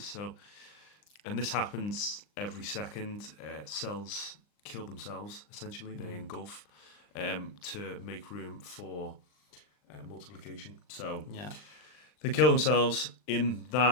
and this happens every second. Cells kill themselves. Essentially, they engulf to make room for multiplication. So Yeah. they kill themselves. In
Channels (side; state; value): right; late; 39 ms